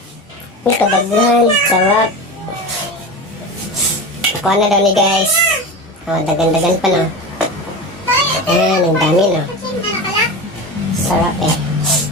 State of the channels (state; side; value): normal; both; correlation 0.27